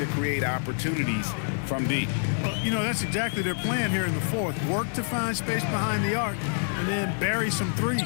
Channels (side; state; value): right; silent; digital silence